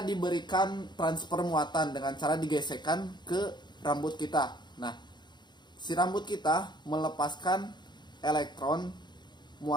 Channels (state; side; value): late; right; 0.21 ms